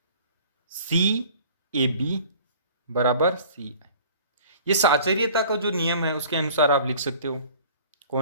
सी ए बी बराबर सी आई। ये साचर्यता का जो नियम है उसके अनुसार आप लिख सकते हो।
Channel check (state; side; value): inverted; both; correlation -0.48